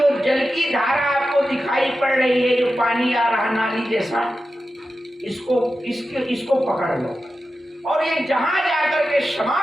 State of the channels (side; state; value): both; normal; correlation 0.92